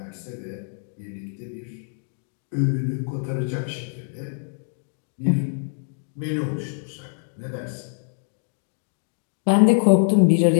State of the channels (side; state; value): right; silent; digital silence